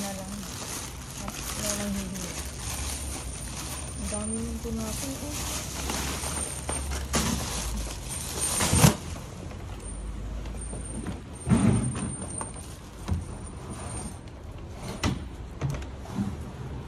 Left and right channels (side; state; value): both; identical; correlation 1.00